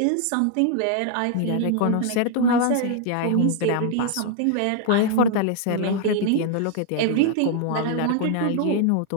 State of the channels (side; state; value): both; different; correlation 0.00